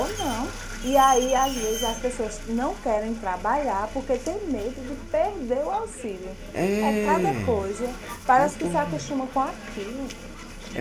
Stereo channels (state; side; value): identical; both; correlation 1.00